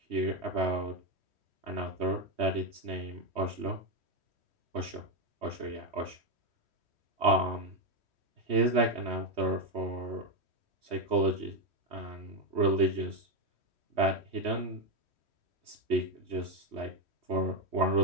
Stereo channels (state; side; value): late; left; 3.1 ms